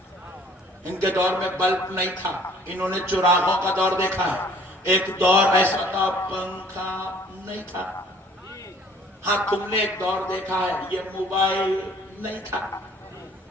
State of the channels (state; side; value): normal; both; correlation 0.56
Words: ان کے دور میں بلب نہیں تھا، انہوں نے چراغوں کا دور دیکھا ہے۔ ایک دور ایسا تھا پنکھا نہیں تھا، ہاں تم نے ایک دور دیکھا ہے یہ موبائل نہیں تھا،